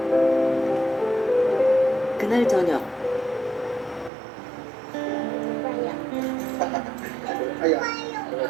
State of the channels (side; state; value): left; drops out; at 4.1 s